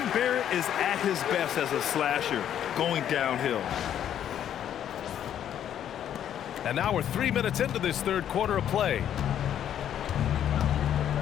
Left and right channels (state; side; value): quieter; right; 10.1 dB